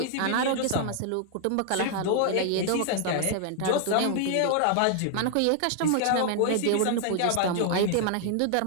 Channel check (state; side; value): different; both; correlation 0.00